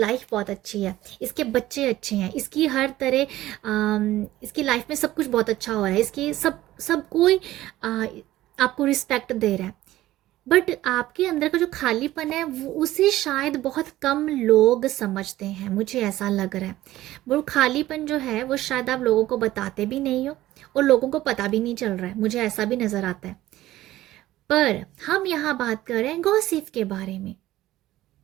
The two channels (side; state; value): left; quieter; 15.4 dB